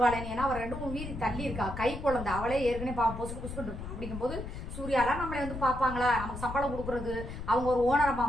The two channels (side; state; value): left; noise; rumble, 8 dB below the sound